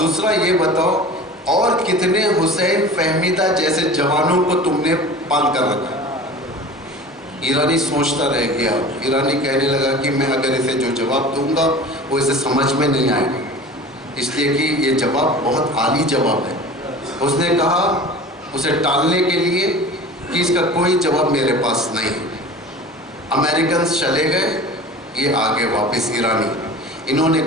یہ بتاؤ اور کتنے حسین فہمیدہ جیسے جوانوں کو تم نے پال کر رکھا۔ ایرانی سوچتا رہ گیا۔ ایرانی کہنے لگا کہ میں اگر اسے جو جواب دوں گا وہ اسے سمجھ میں نہیں آئے گا، اس لیے کہ یہ جواب بہت عالی جواب ہے۔ اس نے کہا اسے ٹالنے کے لیے کہ اس کا کوئی جواب میرے پاس نہیں۔ امریکنز چلے گئے، یہ آگے واپس ایرانی، انہوں نے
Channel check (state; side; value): normal; both; correlation 0.38